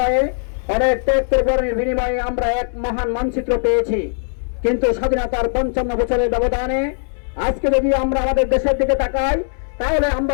অনেক ত্যাগ পরিবর্তনের বিনিময়ে আমরা এক মহান মানচিত্র পেয়েছি। কিন্তু স্বাধীনতার 55 বছরের ব্যবধানে আজকে যদি আমরা আমাদের দেশের দিকে তাকাই, তাহলে আমরা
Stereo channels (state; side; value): silent; right; digital silence